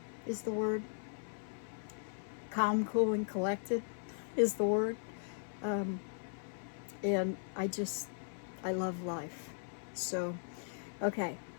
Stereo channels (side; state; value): right; silent; 52 dB below the other